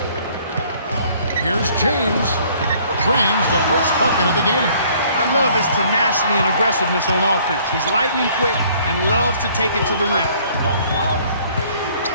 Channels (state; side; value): inverted; both; correlation -0.58